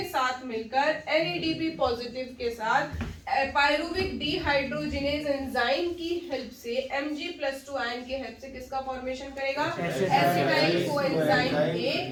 साथ मिलकर NADP पॉजिटिव के साथ पायरुविक डिहाइड्रोजिनेज एंजाइम की हेल्प से Mg+2 आयन की हेल्प से किसका फॉर्मेशन करेगा, acetyl coenzyme A,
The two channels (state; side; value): identical; both; correlation 1.00